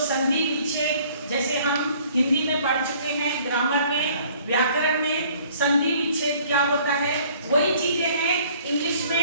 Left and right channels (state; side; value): inverted; both; correlation -0.56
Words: विच्छेद, जैसे हम हिंदी में पढ़ चुके हैं, ग्रामर में, व्याकरण में संधि विच्छेद क्या होता है, वही चीजें हैं इंग्लिश